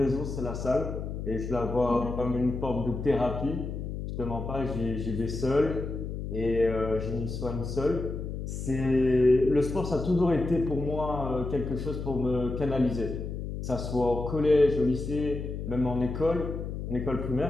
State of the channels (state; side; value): noise; left; hum, 5 dB below the sound